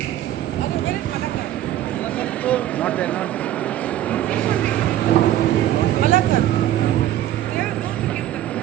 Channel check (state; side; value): quieter; left; 12.7 dB